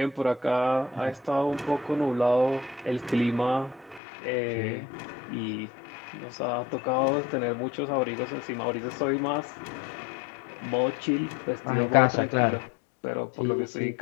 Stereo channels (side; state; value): right; drops out; at 4.0 s